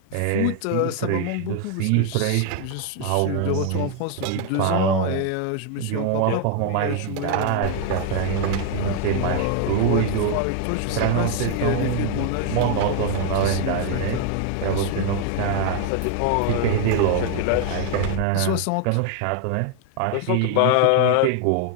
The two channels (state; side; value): different; both; correlation 0.00